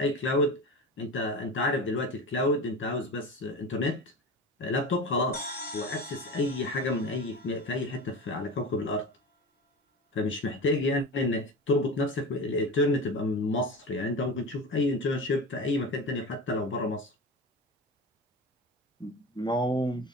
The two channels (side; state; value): both; normal; correlation 0.28